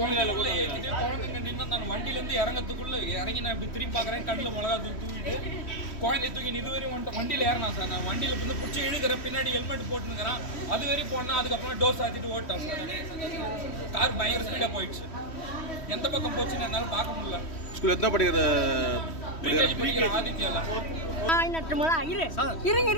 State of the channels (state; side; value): late; right; 3.1 ms